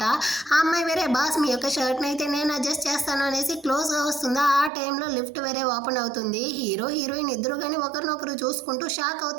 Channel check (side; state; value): left; drops out; at 4.7 s